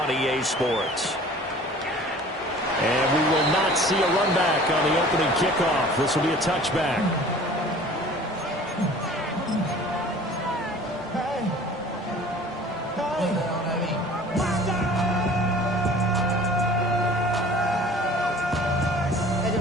EA Sports. And we will not see a run back on the opening kickoff. This will be a touchback.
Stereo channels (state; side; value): normal; both; correlation 0.46